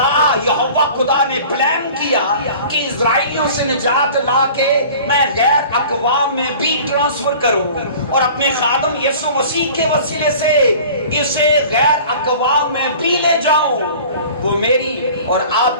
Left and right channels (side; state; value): both; inverted; correlation -0.44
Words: یہوہ خدا نے پلان کیا کہ اسرائیلیوں سے نجات لا کے میں غیر اقوام میں بھی ٹرانسفر کروں، اور اپنے خادم یسوع مسیح کے وسیلے سے اسے غیر اقوام میں بھی لے جاؤں۔ وہ میری اور